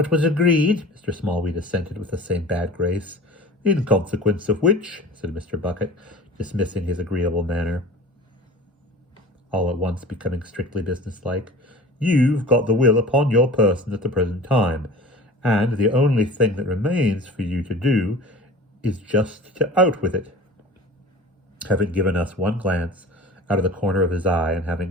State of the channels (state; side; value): normal; both; correlation 0.39